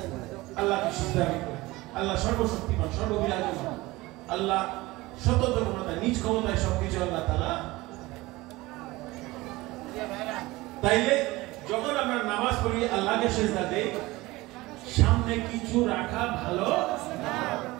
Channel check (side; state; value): left; quieter; 20.2 dB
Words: আল্লাহকে সিজদা করব, আল্লাহ সর্বশক্তিমান, সর্ববিরাজমান, আল্লাহ স্বতন্ত্র ক্ষমতায়, নিজ ক্ষমতায় সবকিছু আল্লাহ তাআলা। তাইলে যখন আমরা নামাজ পড়ি, আল্লাহকে সিজদা দেই, সামনে কিছু রাখা ভালো না,